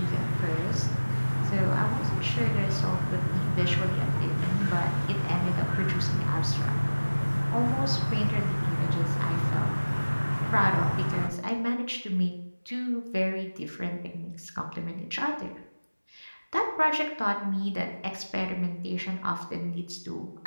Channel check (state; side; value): inverted; both; correlation -1.00